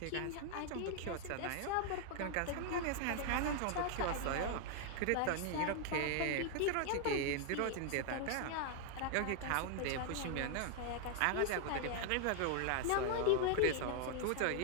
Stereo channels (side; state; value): both; different; correlation 0.00